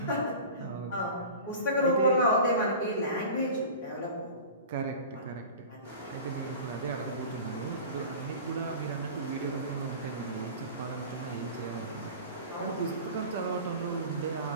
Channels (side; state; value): both; inverted; correlation -0.36